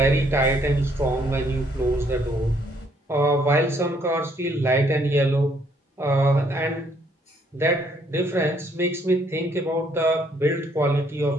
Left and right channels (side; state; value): both; normal; correlation 0.68